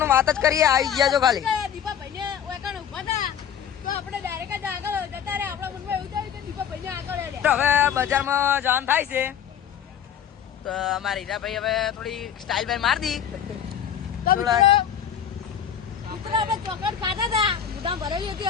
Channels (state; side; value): quieter; right; 8.8 dB